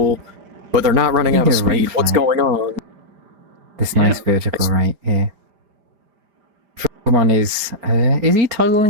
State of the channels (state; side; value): late; left; 4.3 ms